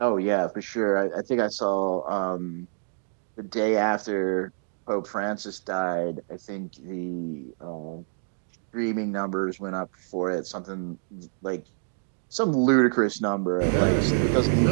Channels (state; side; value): silent; left; digital silence